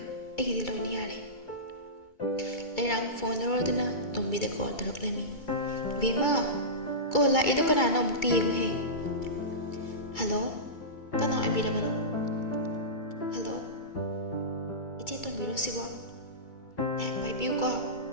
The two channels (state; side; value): late; right; 2.3 ms